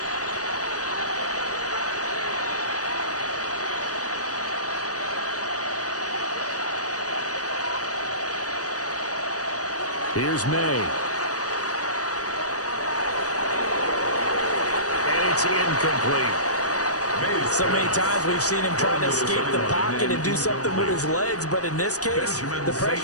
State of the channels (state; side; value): late; right; 0.67 ms